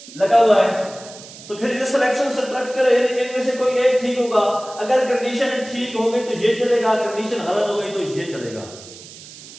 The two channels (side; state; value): right; noise; hiss, 17 dB below the sound